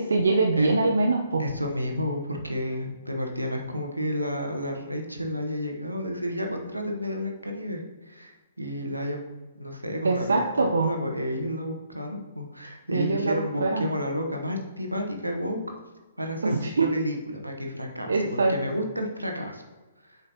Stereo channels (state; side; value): inverted; both; correlation -0.74